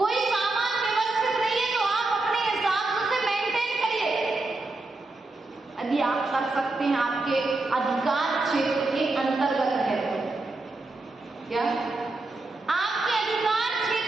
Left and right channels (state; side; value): quieter; left; 3.1 dB